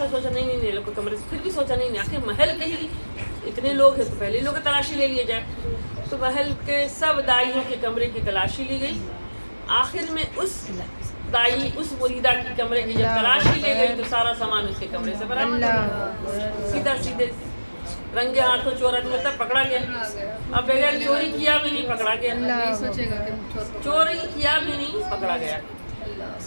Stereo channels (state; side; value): inverted; both; correlation -1.00